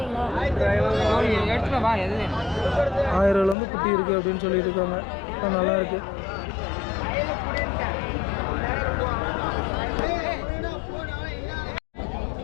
ரூபாயிலேருந்து குட்டி இருக்குது அப்படின்னு சொல்லிட்டு இருக்காங்க. நல்லா இருக்கு.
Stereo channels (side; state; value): right; drops out; at 3.6 s